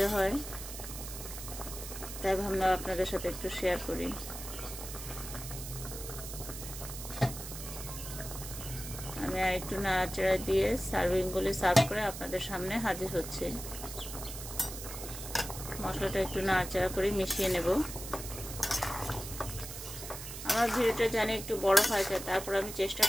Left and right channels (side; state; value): right; noise; hiss, 9 dB below the sound